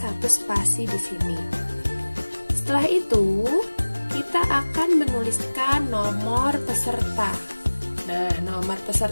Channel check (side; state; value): both; inverted; correlation -1.00